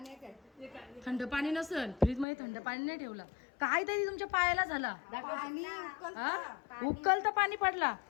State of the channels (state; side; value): drops out; right; at 2.2 s